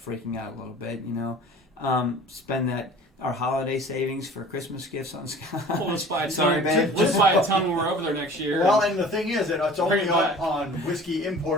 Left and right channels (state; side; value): normal; both; correlation 0.44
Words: out a little bit. Spend our holiday savings for Christmas gifts on Scotch. Well, let's buy a ton. Sorry, babe. Let's buy a ton when we're over there next year. Well, and the thing is that it's only Bring it back. on whiskey